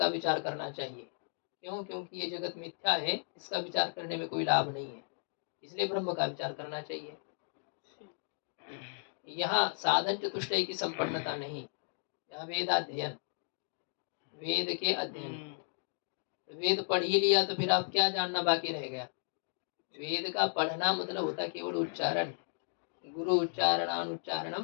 विचार करना चाहिए। क्यों? क्योंकि ये जगत मिथ्या है, इसका विचार करने में कोई लाभ नहीं है, इसलिए ब्रह्म का विचार करना चाहिए। यहाँ साधन चतुष्टय की संपन्नता नहीं, यहाँ वेदाध्ययन, वेद के अध्ययन। वेद पढ़ ही लिया तो फिर आप क्या जानना बाकी रह गया? वेद का पढ़ना मतलब होता है केवल उच्चारण, गुरु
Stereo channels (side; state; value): right; silent; digital silence